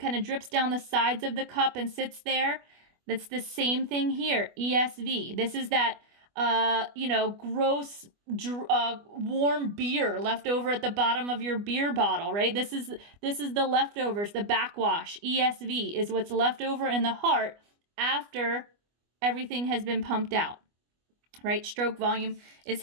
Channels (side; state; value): left; late; 25 ms